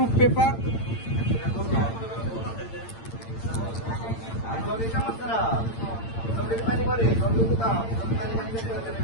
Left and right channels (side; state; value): right; late; 8.8 ms